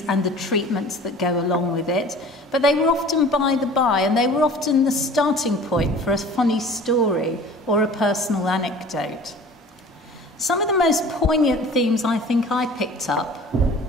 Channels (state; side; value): normal; both; correlation 0.44